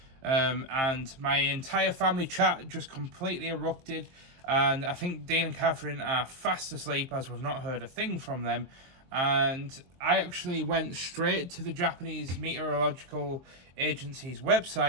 and my entire family chat just completely erupted, and I think Dean and Catherine are fast asleep as we've not heard a thing from them. And I actually went straight to the Japanese Meteorological Agency's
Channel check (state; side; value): late; left; 23 ms